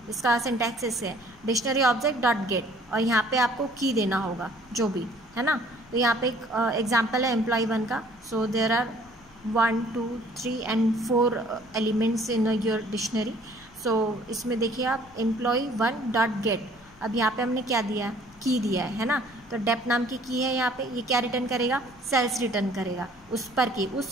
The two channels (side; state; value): left; noise; rumble, 26 dB below the sound